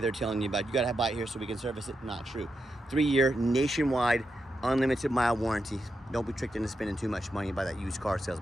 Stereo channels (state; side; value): normal; both; correlation 0.86